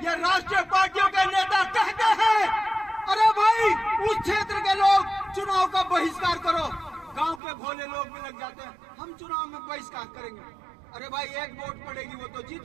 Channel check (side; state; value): left; drops out; at 7.4 s